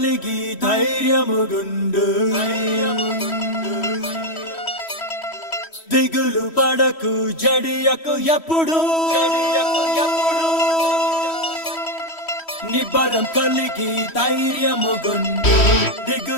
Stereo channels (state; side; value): late; right; 3.1 ms